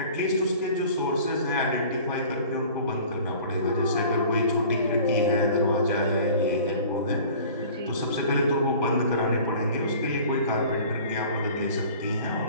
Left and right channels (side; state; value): both; inverted; correlation -0.46